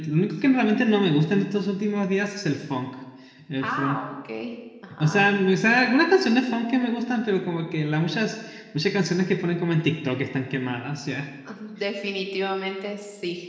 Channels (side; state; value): both; identical; correlation 1.00